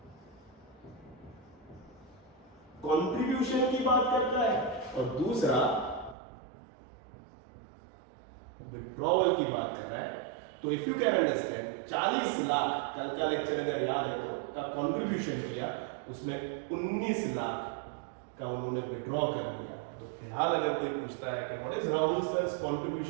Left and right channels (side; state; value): left; drops out; at 6.2 s